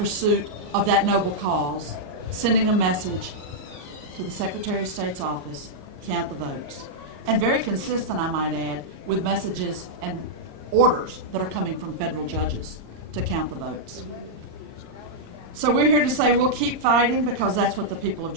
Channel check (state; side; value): late; left; 34 ms